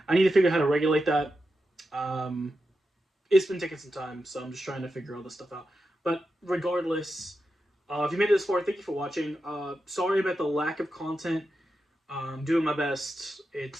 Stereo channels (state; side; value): normal; both; correlation 0.88